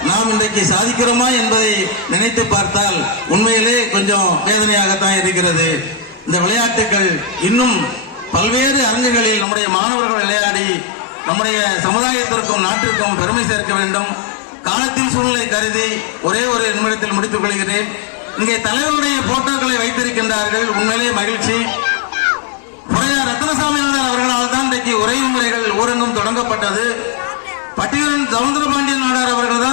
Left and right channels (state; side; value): drops out; right; at 9.5 s